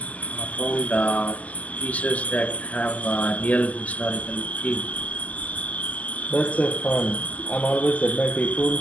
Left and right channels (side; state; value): right; late; 0.073 ms